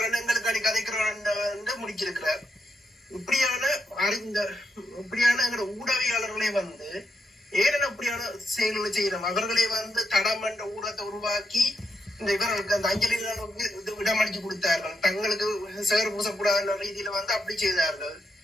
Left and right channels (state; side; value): normal; both; correlation 0.82